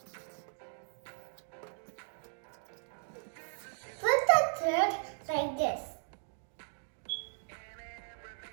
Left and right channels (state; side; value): silent; left; digital silence